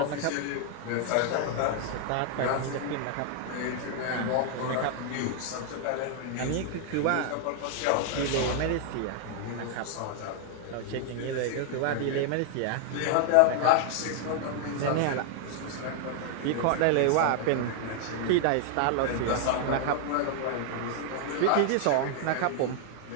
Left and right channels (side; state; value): both; different; correlation 0.00